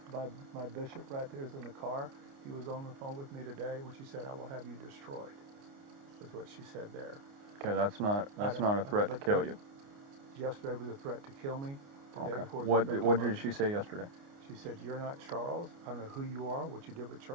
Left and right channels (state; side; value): late; left; 29 ms